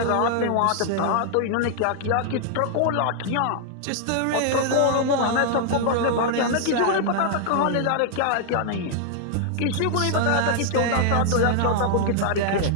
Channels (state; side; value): different; both; correlation -0.01